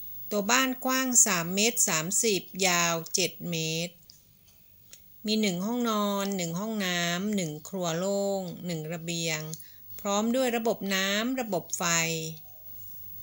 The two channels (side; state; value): both; identical; correlation 1.00